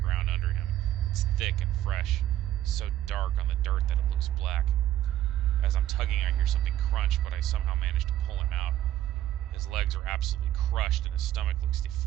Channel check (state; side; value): quieter; left; 12.7 dB